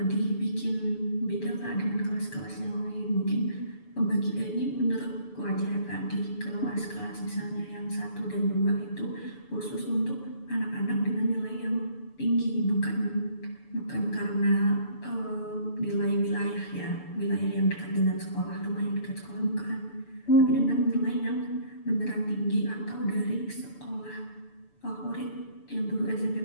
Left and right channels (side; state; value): right; late; 6.9 ms